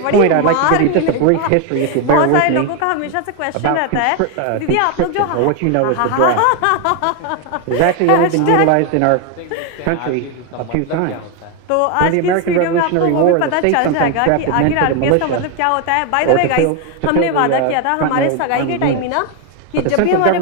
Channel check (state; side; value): different; both; correlation 0.01